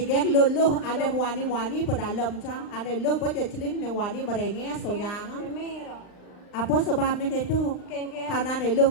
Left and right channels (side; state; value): right; late; 39 ms